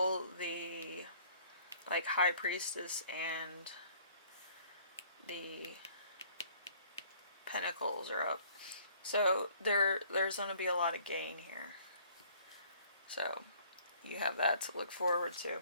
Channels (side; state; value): both; inverted; correlation -0.57